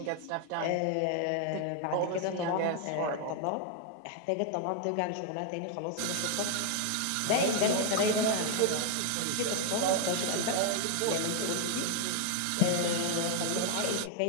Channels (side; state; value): both; different; correlation 0.00